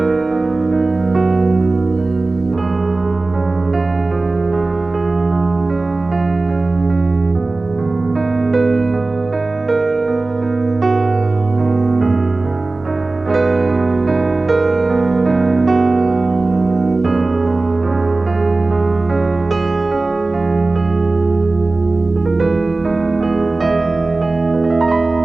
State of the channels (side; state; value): left; quieter; 3.3 dB